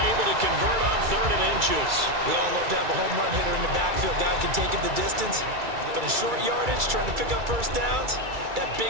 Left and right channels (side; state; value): left; late; 2.3 ms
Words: able to convert on 3rd and inches. We all love to have a home run hitter in the backfield. Guy can take it the distance. But in short yardage, trying to pick up first downs, that big